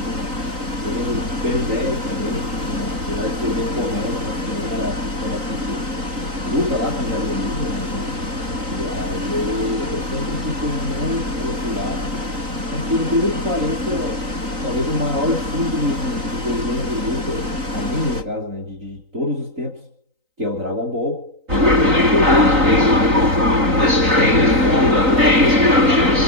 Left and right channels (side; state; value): left; late; 3.9 ms